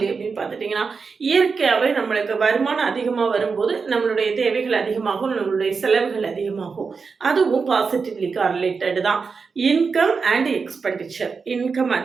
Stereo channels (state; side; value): quieter; left; 5.1 dB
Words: அப்படின்னு பார்த்துட்டிங்கன்னா, இயற்கையாகவே நம்மளுக்கு வருமானம் அதிகமாக வரும்போது நம்மளுடைய தேவைகள் அதிகமாகும், நம்மளுடைய செலவுகள் அதிகமாகும். அதுவும் பாசிட்டிவ்லி கார்லேட்டட் தான். Income and expenditure. இன்கம்